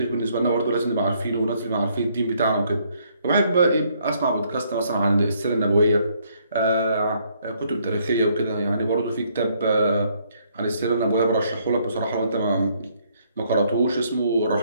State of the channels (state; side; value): inverted; both; correlation -0.68